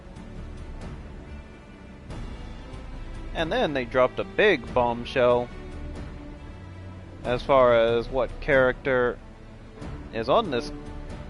And then they dropped a big bombshell as far as what character is on this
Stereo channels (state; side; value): identical; both; correlation 1.00